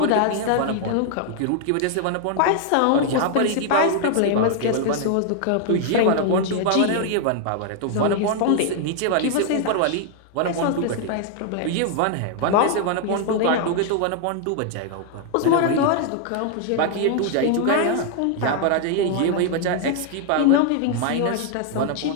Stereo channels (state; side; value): different; both; correlation 0.00